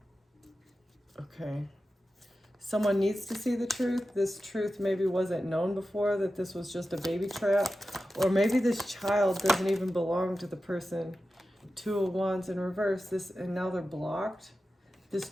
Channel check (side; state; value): both; normal; correlation 0.93